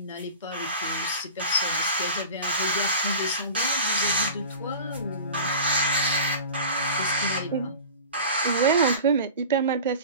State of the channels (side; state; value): both; inverted; correlation -0.37